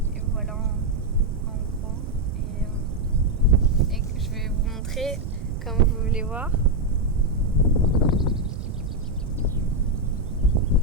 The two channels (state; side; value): noise; right; rumble, 7 dB below the sound